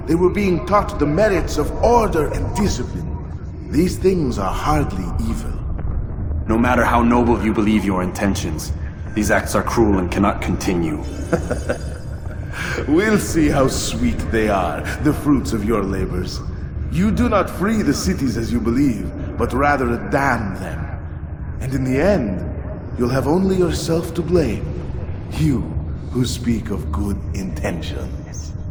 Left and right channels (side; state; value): both; identical; correlation 1.00